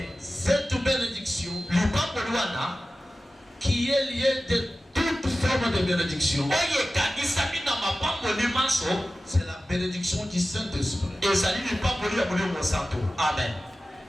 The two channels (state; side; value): normal; both; correlation 0.95